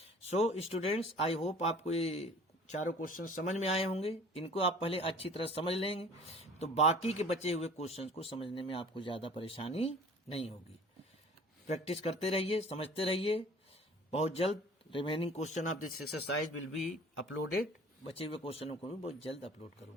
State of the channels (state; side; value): normal; both; correlation 0.47